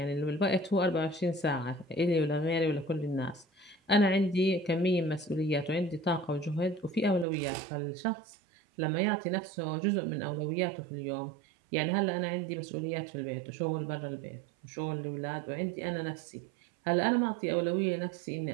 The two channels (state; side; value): drops out; left; at 7.2 s